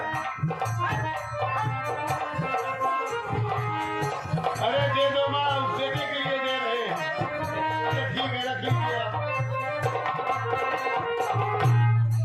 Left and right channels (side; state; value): both; identical; correlation 1.00